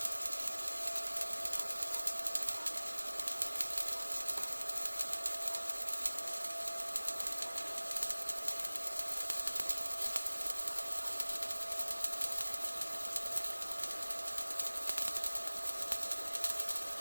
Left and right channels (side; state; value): both; inverted; correlation -1.00